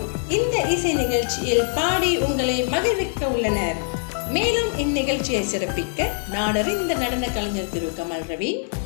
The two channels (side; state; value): right; silent; 57 dB below the other